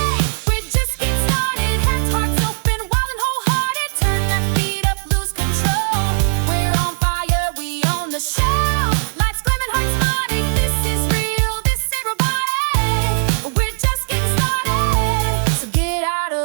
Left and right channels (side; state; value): left; silent; digital silence